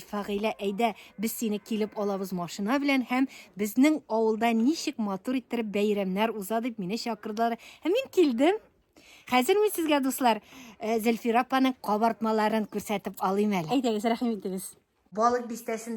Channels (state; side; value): identical; both; correlation 1.00